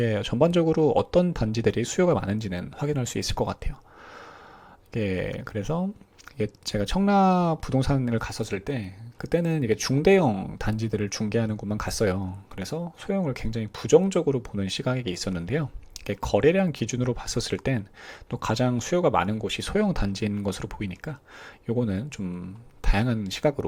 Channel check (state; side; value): identical; both; correlation 1.00